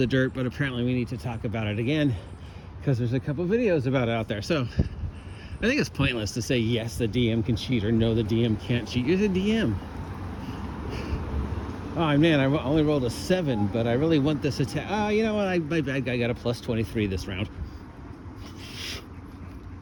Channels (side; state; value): both; identical; correlation 1.00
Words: dirt, but apparently we need to talk about it again because there's a couple videos about it out there. So I think it's pointless to say yes, the DM can cheat, or no, the DM can't cheat. You're the DM. Oh man, I only rolled a 7, but I really want this attack. Oh, you know what? My bad guy got a plus 23 this round.